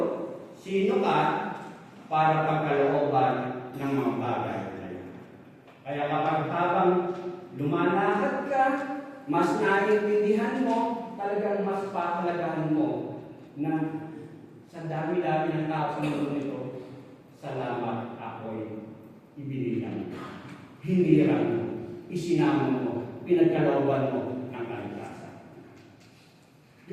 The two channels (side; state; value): both; identical; correlation 1.00